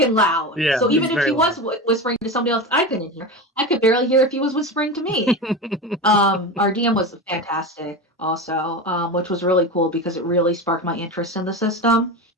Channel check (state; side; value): normal; both; correlation 0.24